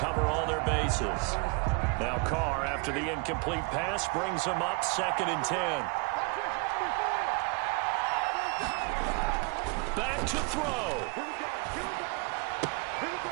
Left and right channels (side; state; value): left; quieter; 29.3 dB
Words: all their bases. Now Carr, after the incomplete pass, brings him up 2nd and 10. Back to throw.